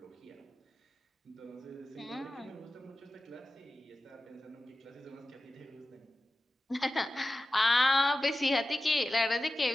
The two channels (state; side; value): normal; both; correlation 0.94